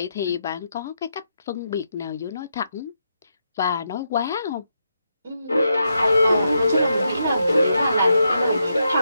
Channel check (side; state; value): both; inverted; correlation -0.82